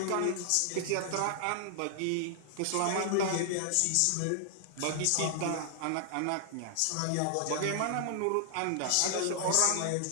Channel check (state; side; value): different; both; correlation -0.01